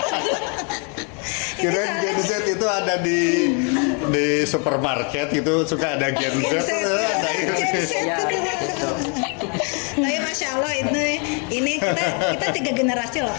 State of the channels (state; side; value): quieter; right; 37.7 dB